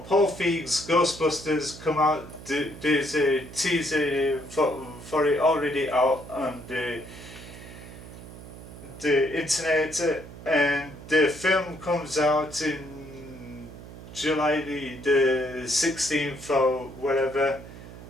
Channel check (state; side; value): noise; right; hum, 15 dB below the sound